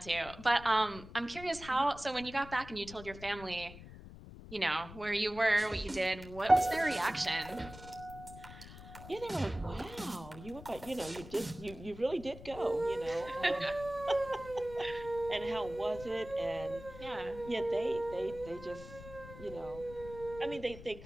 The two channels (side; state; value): left; noise; rumble, 15 dB below the sound